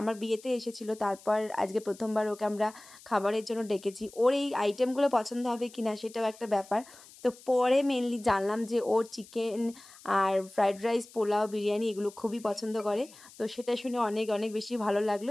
বিয়েতে এসেছিল, তারপর আজকে প্রথমবার ওকে আমরা খাবারের জন্য ডেকেছি। ওর এই আইটেমগুলো পছন্দ হবে কি না সেটাও একটা ব্যাপার। তো পরে মেনলি জানলাম যে ওর চিকেন আর ফ্রাইড রাইস, পোলাও, বিরিয়ানি এগুলো খুবই পছন্দ করে। তো সেটা শুনে অনেক অনেক বেশি ভালো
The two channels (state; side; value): noise; left; hiss, 21 dB below the sound